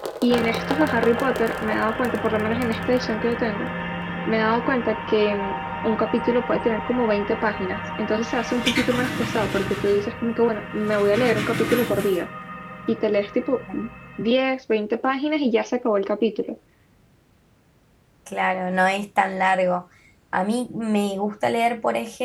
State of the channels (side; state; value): both; identical; correlation 1.00